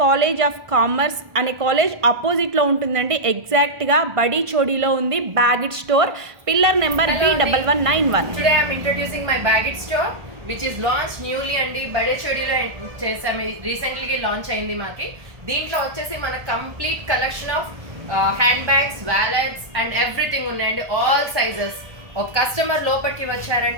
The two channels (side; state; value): left; late; 1.5 ms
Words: కాలేజ్ ఆఫ్ కామర్స్ అనే కాలేజ్ ఆపోజిట్లో ఉంటుందండి. ఎగ్జాక్ట్గా బడిచోడిలో ఉంది Bagit store. Pillar number B1191. Today I am introducing my Bagit store which is launched newly అండి. బడేచోడిలో చేసాము, రీసెంట్లీ లాంచ్ అయింది మాకి. దీంట్లో వచ్చేసి మన complete collection of hand bags, wallets and everything ఉన్నాయండి. All sizes. ఒక కస్టమర్ లోపలికి